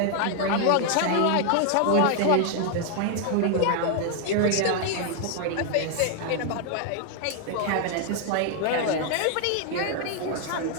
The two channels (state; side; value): different; both; correlation 0.00